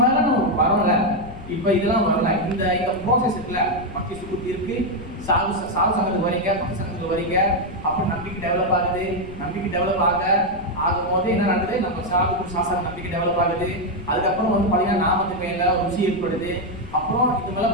நம்ம வரல, இப்ப இதெல்லாம் வரல, இந்த ப்ராசஸ் இருக்குல்ல, பக்தி சுக்குத்தி இருக்கு, சாது சங்கத்துக்கு வரீங்க, பக்தி சங்கத்துக்கு வரீங்க, அப்புறம் நம்பிக்கை டெவலப் ஆகுது. நம்பிக்கை டெவலப் ஆகும்போது என்ன நடக்குது? நம்ம சாது சாஸ்திர நம்பிக்கை டெவலப் ஆகுது. அதுக்கப்புறம் வந்து பார்த்தீங்கன்னா நாமத்துக்கு மேல ருசி ஏற்படுது. அப்புறம்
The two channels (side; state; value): left; noise; rumble, 15 dB below the sound